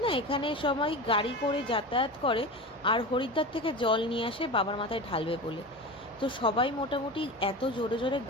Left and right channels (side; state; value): both; normal; correlation 0.28